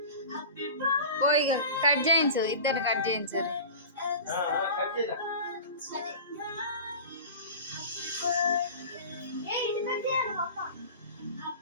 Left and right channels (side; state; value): both; inverted; correlation -0.35